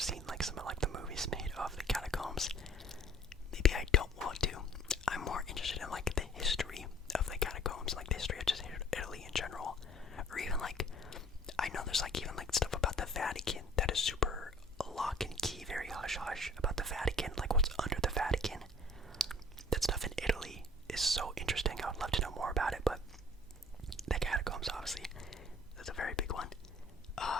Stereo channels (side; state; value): both; normal; correlation 0.52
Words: seen like some of like the movies made of the catacombs. Maybe I don't want to. I'm more interested in like the history of the catacombs, like the history of just Italy in general, or even like, I know there's like even like stuff about the Vatican that is super lock and key, very hush hush about the Vatican, like what's under the Vatican. That stuff in Italy is so interesting. I would love to know more about it, but the catacombs, obviously, that's a very big one.